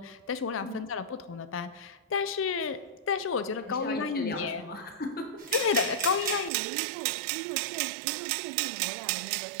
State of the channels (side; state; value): left; drops out; at 6.5 s